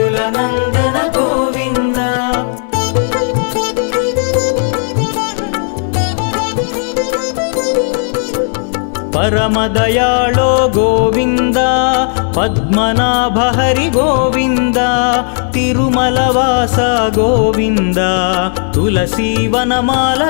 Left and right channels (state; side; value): silent; right; 55 dB below the other